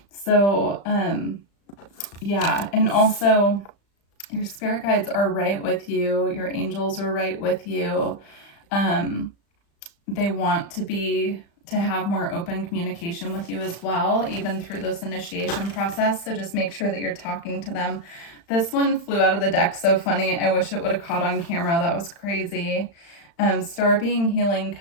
So, yeah, and also your spirit guides are right with you. Your angels are right with you. They want to have more open communication with you as well, even through this initiation process. So just make sure that you're talking to them. This one flew out of the deck so funny. I wish it would have caught on camera. That was crazy. Star being healing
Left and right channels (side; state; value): right; late; 35 ms